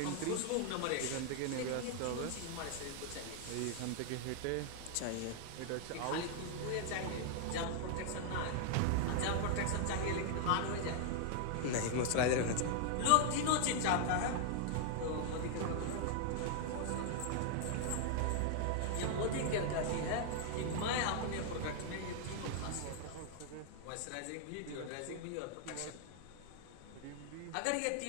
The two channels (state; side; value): different; both; correlation 0.00